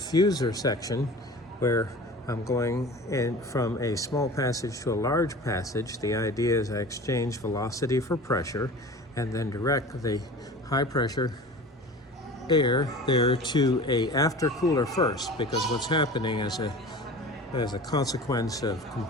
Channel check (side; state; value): both; normal; correlation 0.38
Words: section where I'm going in from a small passage to a large passage. The idea is I exchange velocity for pressure and then direct the high pressure air there to a aftercooler first, because what's happening as a consequence of